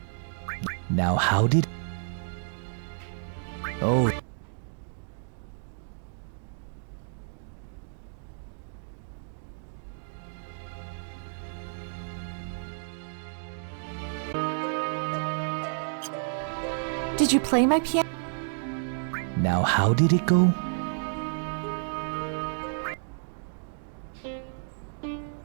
Now how did... Oh. Did you play my piano? Now how did it go?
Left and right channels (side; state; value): left; silent; digital silence